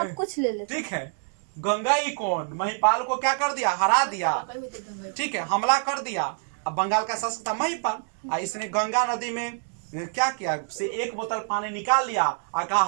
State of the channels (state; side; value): silent; left; 56 dB below the other